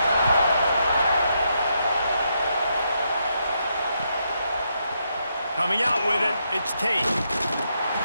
Coming out with it, it's Tate.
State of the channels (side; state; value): both; inverted; correlation -0.80